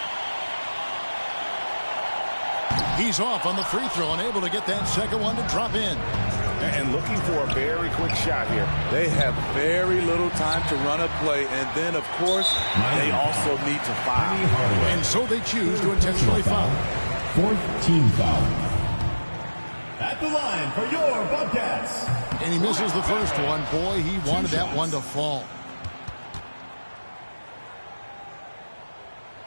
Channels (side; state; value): both; inverted; correlation -1.00